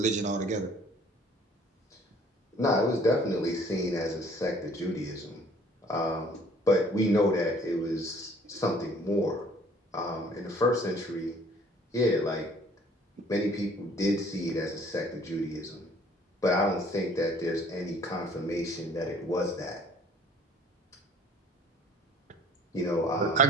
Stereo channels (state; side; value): normal; both; correlation 0.56